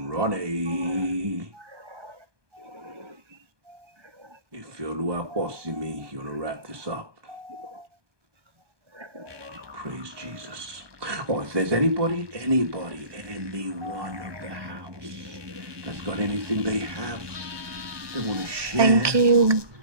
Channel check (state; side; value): late; left; 1.2 ms